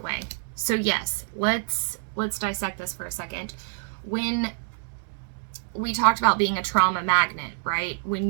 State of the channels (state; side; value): silent; left; digital silence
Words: So yes, let's dissect this for a second. When we talked about being a trauma magnet, right?